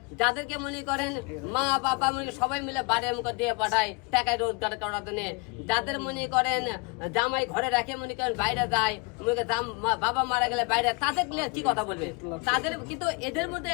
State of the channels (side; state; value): right; quieter; 30.3 dB